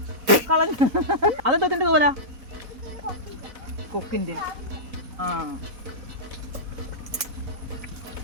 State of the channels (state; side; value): late; left; 4.1 ms